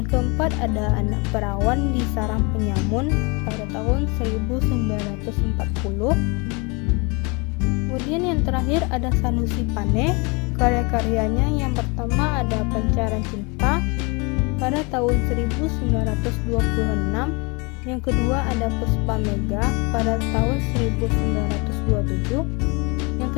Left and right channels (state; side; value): quieter; right; 29.7 dB